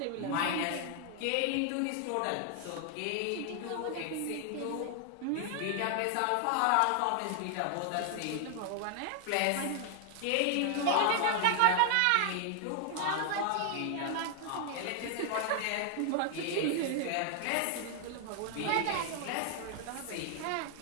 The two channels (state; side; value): different; both; correlation 0.00